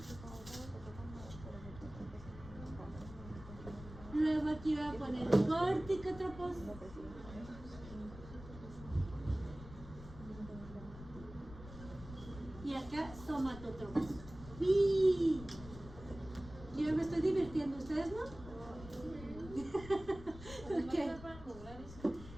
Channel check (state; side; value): noise; left; rumble, 15 dB below the sound